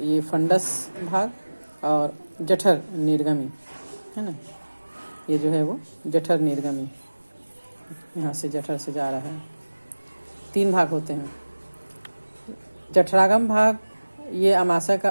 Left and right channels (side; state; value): both; inverted; correlation -1.00